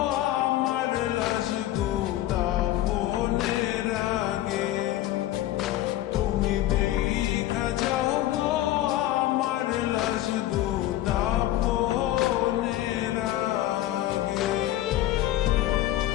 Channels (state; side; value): quieter; right; 14.3 dB